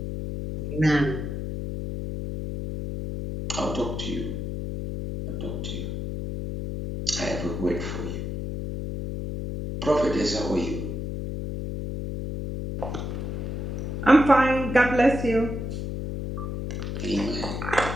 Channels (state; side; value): noise; left; hum, 4 dB below the sound